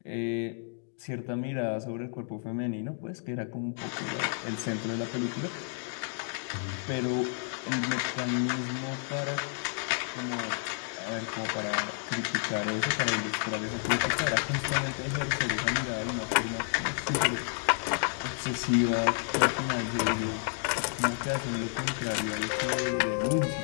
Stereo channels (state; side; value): silent; right; 57 dB below the other